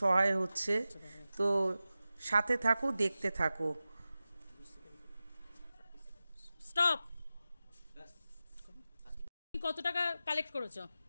সহায় হচ্ছে। তো সাথে থাকো, দেখতে থাকো। স্টপ। কত টাকা কালেক্ট করেছো?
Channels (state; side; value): inverted; both; correlation -0.94